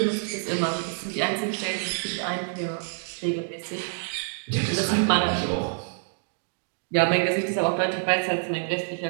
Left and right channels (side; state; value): left; silent; digital silence